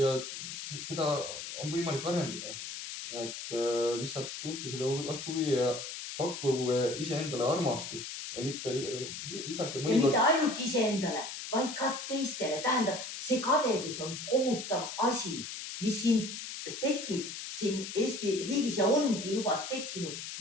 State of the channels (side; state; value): left; noise; hiss, 8 dB below the sound